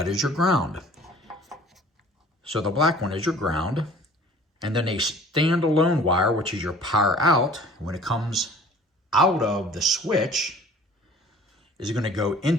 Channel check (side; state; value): both; normal; correlation 0.49